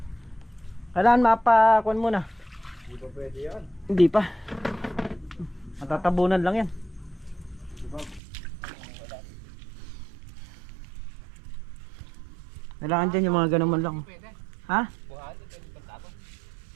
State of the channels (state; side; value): drops out; left; at 8.2 s